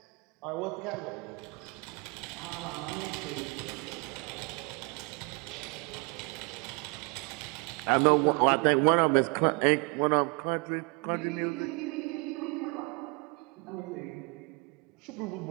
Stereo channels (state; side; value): quieter; left; 30.9 dB